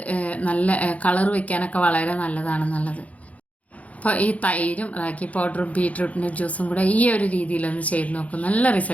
നല്ല കളർ വയ്ക്കാനൊക്കെ വളരെ നല്ലതാണെന്നുള്ളത്. അപ്പോൾ ഈ തൈരും റാഗി പൗഡറും ബീട്രൂട്ടിൻ്റെ ജ്യൂസും കൂടെ ഈ ഒരു രീതിയിലൊന്ന് ചെയ്ത് നോക്കും, നല്ല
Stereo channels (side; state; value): right; late; 0.068 ms